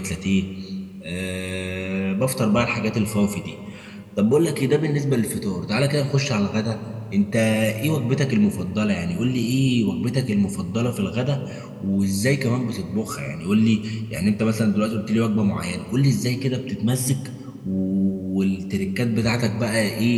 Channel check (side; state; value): both; identical; correlation 1.00